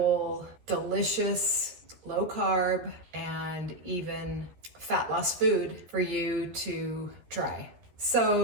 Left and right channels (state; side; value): late; left; 13 ms